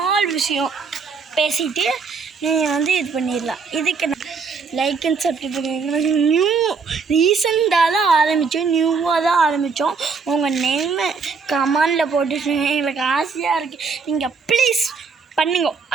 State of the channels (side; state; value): left; quieter; 5.1 dB